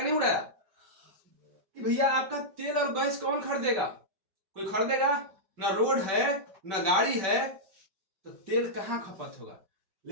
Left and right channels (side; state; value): left; late; 5.2 ms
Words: नहीं उड़ाया कि भैया आपका तेल और गैस कौन खरीदेगा? कोई खरीदेगा? ना रोड है ना गाड़ी है, तो तेल कहां खपत होगा।